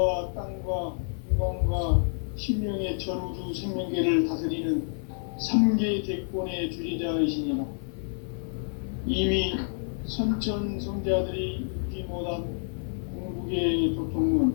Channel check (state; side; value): silent; right; 55 dB below the other